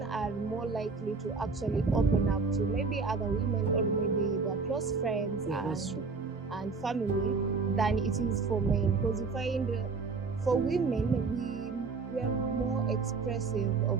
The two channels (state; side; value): quieter; left; 4.4 dB